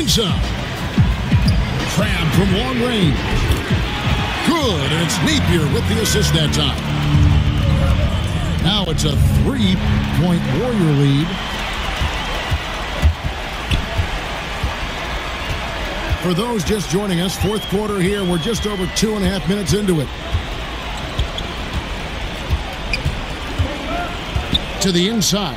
Crabb from long range. Good, and it's Napier with the assist that time. Now it's a 3-point Warrior lead. For those just joining us, fourth quarter here. We're just over 2.5 minutes into it. To the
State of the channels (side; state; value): both; identical; correlation 1.00